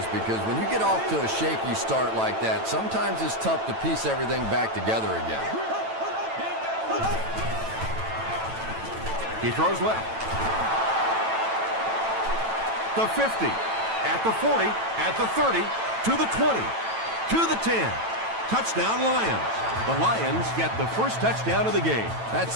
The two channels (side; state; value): left; late; 9.0 ms